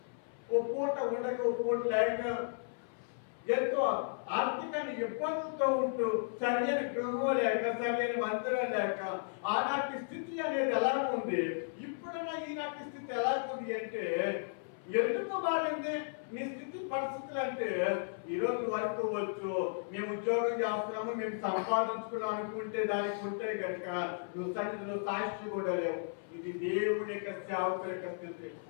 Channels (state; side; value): silent; right; 55 dB below the other